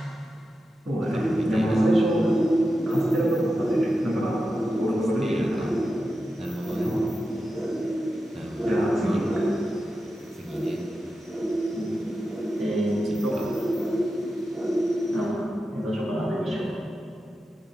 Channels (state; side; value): normal; both; correlation 0.91